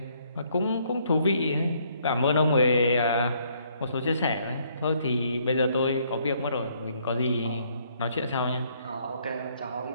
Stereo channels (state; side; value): inverted; both; correlation -0.67